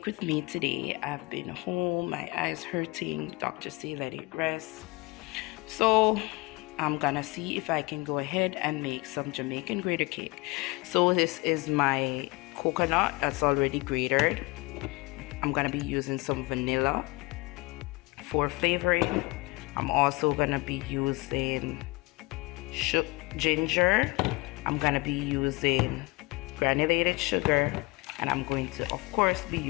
with me today. I've been home, my eyes hurting. Doctor say let it rest. So I'm gonna see if I can go ahead and make some Jamaican grater cake. So this is my coconut that's already grated. I'm gonna be using some vanilla for flavoring. I'm also gonna be using ginger. I'm gonna be using granulated sugar, and I'm going to of course be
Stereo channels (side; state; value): right; quieter; 24.5 dB